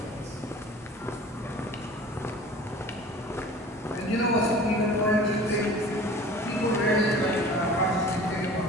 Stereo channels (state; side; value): normal; both; correlation 0.43